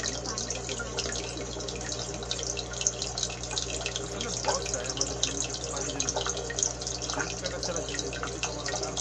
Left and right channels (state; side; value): identical; both; correlation 1.00